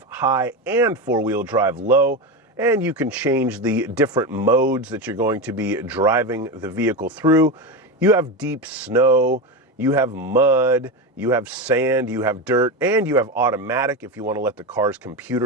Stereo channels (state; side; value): normal; both; correlation 0.17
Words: high and four-wheel drive low, and you can change the different modes that you're going to be driving the vehicle through. You have deep snow, you have mud, you have sand, you have dirt, and you have automatic if you want to let the car's